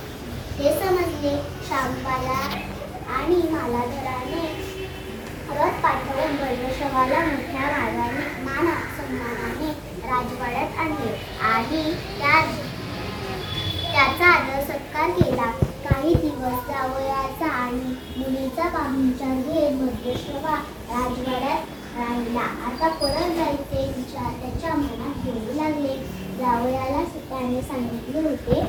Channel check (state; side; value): identical; both; correlation 1.00